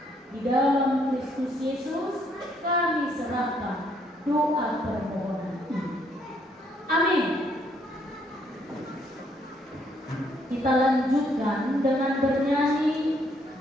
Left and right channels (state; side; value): normal; both; correlation 0.70